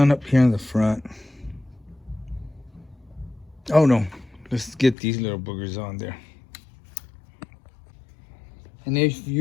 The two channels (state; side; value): drops out; right; at 5.0 s